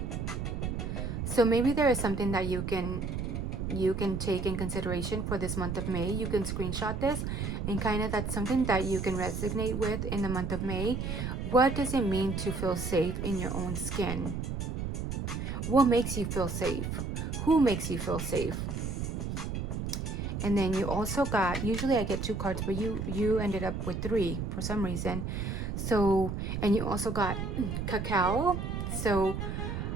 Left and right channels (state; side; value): noise; right; rumble, 3 dB below the sound